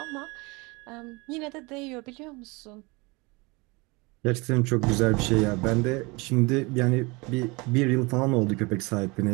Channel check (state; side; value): quieter; left; 26.1 dB